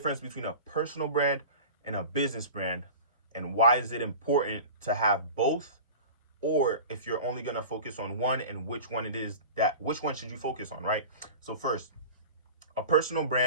between a personal brand and a business brand, and why is it important to have both, or if you're only going to focus on one, and which one which one should you focus on, right? So first, a personal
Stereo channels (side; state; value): both; inverted; correlation -0.36